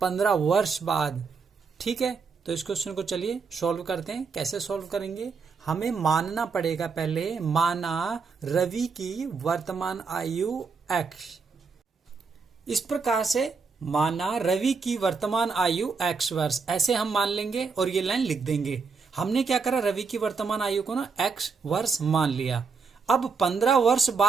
वर्ष बाद। ठीक है, तो इस क्वेश्चन को चलिए सॉल्व करते हैं। कैसे सॉल्व करेंगे, हमें मानना पड़ेगा पहले, माना रवि की वर्तमान आयु x। इस प्रकार से माना रवि की वर्तमान आयु x वर्ष, ऐसे हम मान लेंगे और ये लाइन लिख देंगे। हमने क्या करा, रवि की वर्तमान आयु को ना x वर्ष मान लिया। अब 15 वर्ष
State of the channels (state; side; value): quieter; left; 5.1 dB